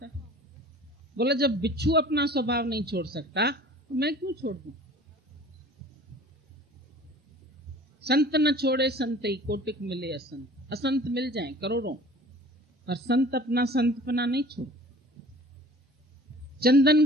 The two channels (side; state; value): both; normal; correlation 0.46